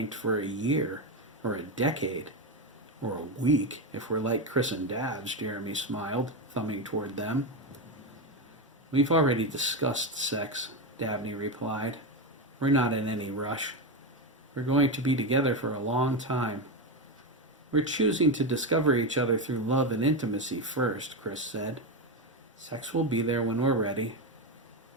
for a year, or a decade, or a week, if we're like Chris and Dabs, Jeremy smiled, thumbing toward them. We've already discussed sex, Dabney replied. We're not in any rush. We're going to be together for a long time. We're choosing to discover each other through love and intimacy first, Chris said. Sex will be there when we're ready.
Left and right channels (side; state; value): both; normal; correlation 0.12